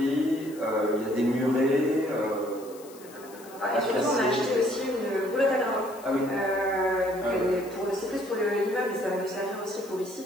il y a des murets. Et surtout on a acheté aussi une boulotte à gravat. Ah oui. C'est plus pour l'immeuble mais ça va nous servir aussi pour ici.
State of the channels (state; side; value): noise; left; hiss, 21 dB below the sound